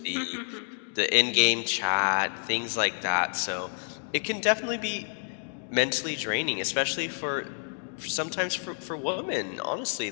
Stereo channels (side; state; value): right; silent; 59 dB below the other